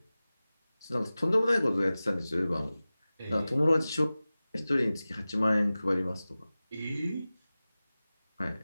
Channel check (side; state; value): both; inverted; correlation -0.97